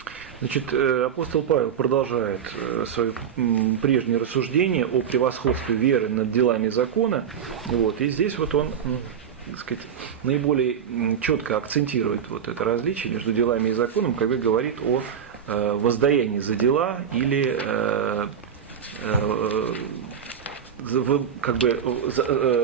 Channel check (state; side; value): quieter; left; 8.0 dB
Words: Значит, апостол Павел продолжает свое прежнее рассуждение о превосходстве веры над делами закона. Вот, и здесь вот он, так сказать, наиболее четко акцентирует вот это различие между делами и законом, когда говорит о воздаянии за дела или как бы